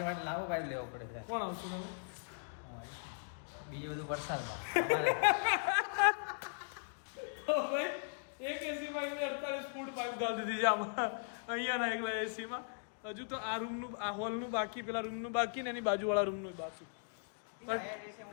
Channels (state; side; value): silent; right; digital silence